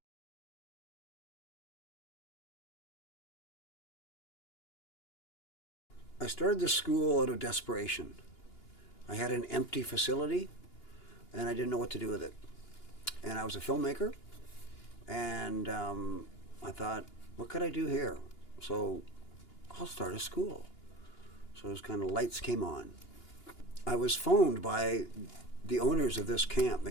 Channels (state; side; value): late; right; 2.9 ms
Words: I started the school out of desperation. I had an empty facility and I didn't know what to do with it. And I was a filmmaker, and I thought, what could I do here? So I'll start a school. So those kind of lights came on. I was phoned by the owners of this camp,